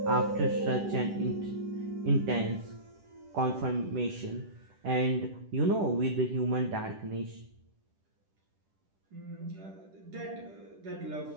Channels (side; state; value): left; late; 10 ms